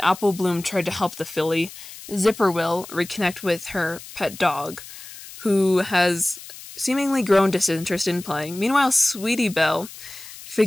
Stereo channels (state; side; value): noise; left; hiss, 15 dB below the sound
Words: Apple Bloom tried to help the filly. Zipper will reconnect with her pet dog, who has seemingly grown disinterested in playing. Meanwhile, Sweetie Belle